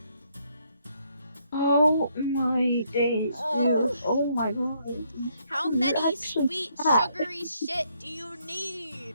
Oh my days, dude. Oh my god. How many sweet, sugary shit do you need?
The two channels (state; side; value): inverted; both; correlation -0.72